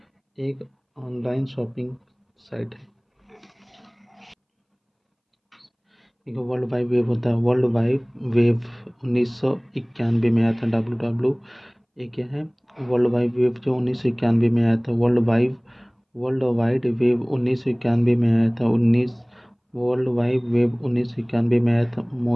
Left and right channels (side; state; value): both; identical; correlation 1.00